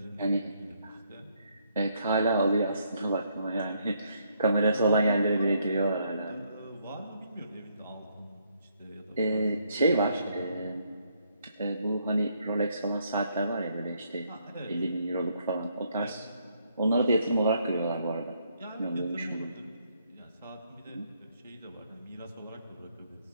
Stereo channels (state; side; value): inverted; both; correlation -0.72